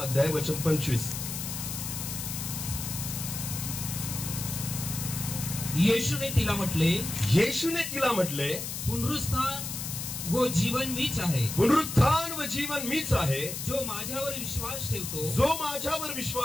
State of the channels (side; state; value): left; noise; hiss, 6 dB below the sound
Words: अध्याय वचन 25. येशूने तिला म्हटले, येशूने तिला म्हटले, पुनरुत्थान व जीवन मीच आहे. पुनरुत्थान व जीवन मीच आहे. जो माझ्यावर विश्वास ठेवतो, जो माझ्यावर